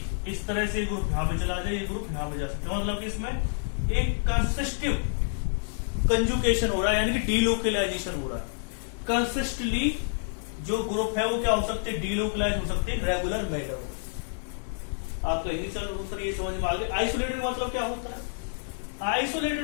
इस तरह से ग्रुप यहां पे चला जाए, ये ग्रुप यहां पे जा सकते हैं। मतलब कि इसमें एक कंसिस्टिव कंजुगेशन हो रहा है, यानी कि डीलोकलाइजेशन हो रहा है। कंसिस्टली जो ग्रुप है वो क्या हो सकते हैं, डीलोकलाइज हो सकते हैं रेगुलर मैनर में। आपको इंग्लिश सर ये समझ में आ गया। आइसोलेटेड मतलब क्या होता है,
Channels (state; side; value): silent; right; 59 dB below the other